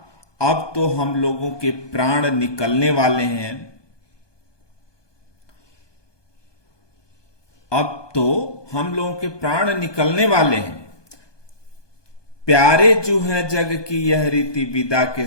अब तो हम लोगों के प्राण निकलने वाले हैं। अब तो हम लोगों के प्राण निकलने वाले हैं। प्यारे जो है जग की यह रीति, विदा के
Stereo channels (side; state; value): right; late; 1.2 ms